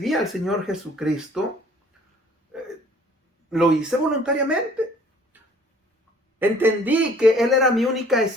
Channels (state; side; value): normal; both; correlation 0.55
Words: al Señor Jesucristo, lo hice voluntariamente. Entendí que Él era mi única